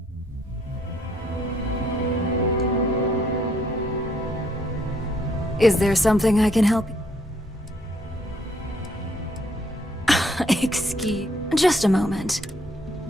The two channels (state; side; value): normal; both; correlation 0.68